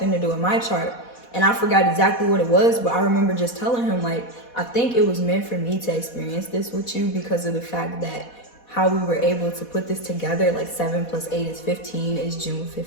to do with my chart. And I forgot exactly what it was, but I remember just telling him, like, I think it was meant for me to experience this with you because of the fact that how we were able to put this together, like 7 plus 8 is 15, is June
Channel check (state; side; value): late; right; 4.1 ms